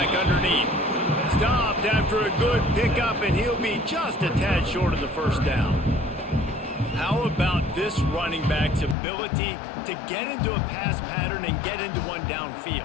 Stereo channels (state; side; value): drops out; right; at 9.0 s